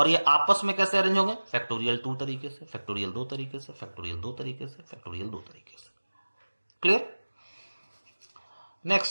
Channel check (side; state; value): both; inverted; correlation -1.00